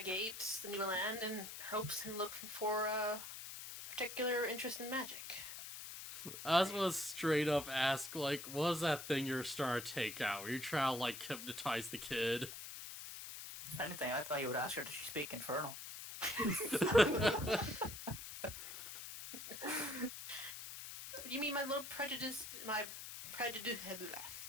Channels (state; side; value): noise; left; hiss, 9 dB below the sound